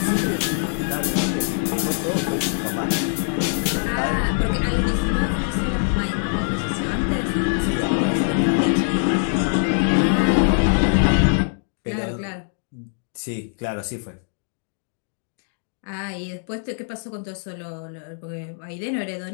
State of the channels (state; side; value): silent; right; 63 dB below the other